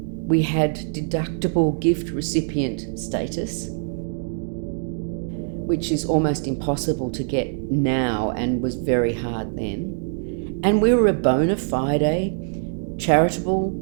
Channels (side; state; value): left; silent; digital silence